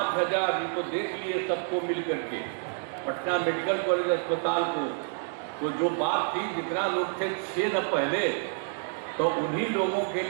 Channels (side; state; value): left; silent; 59 dB below the other